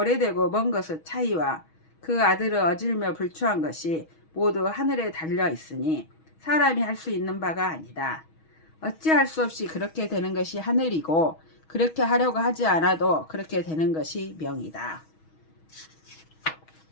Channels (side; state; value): right; late; 6.3 ms